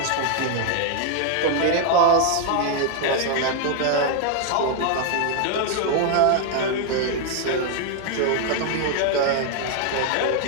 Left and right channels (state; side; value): different; both; correlation 0.00